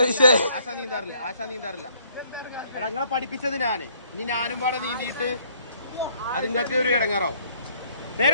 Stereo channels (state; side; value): inverted; both; correlation -0.63